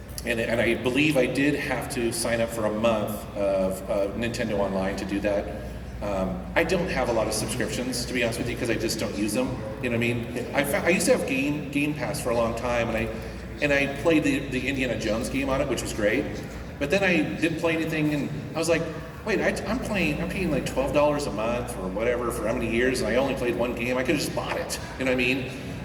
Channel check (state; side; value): identical; both; correlation 1.00